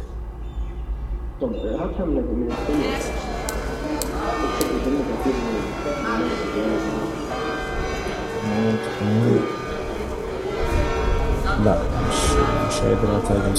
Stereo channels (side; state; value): both; identical; correlation 1.00